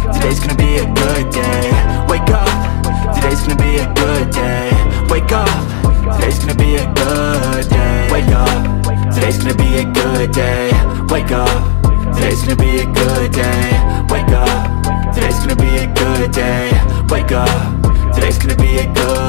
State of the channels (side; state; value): right; silent; digital silence